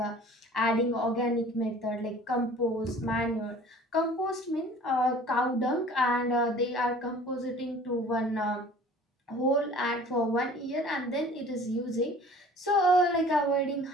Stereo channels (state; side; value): normal; both; correlation 0.47